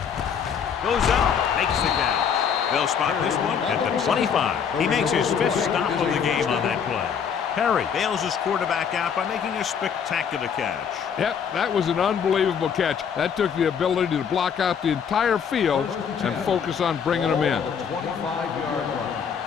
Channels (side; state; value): right; quieter; 7.2 dB